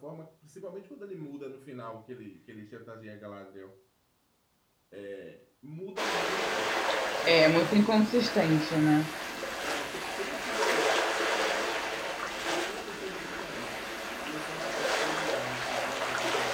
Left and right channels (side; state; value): both; identical; correlation 1.00